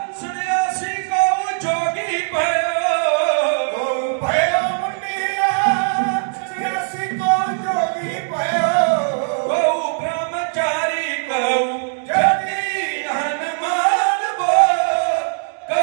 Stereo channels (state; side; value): silent; left; 66 dB below the other